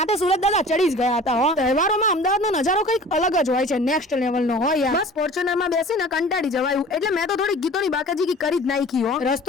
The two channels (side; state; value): both; normal; correlation 0.43